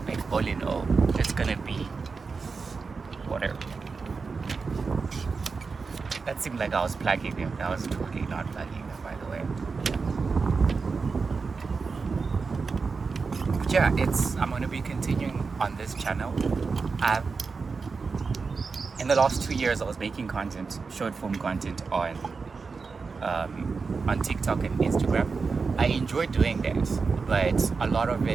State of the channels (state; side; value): quieter; left; 4.7 dB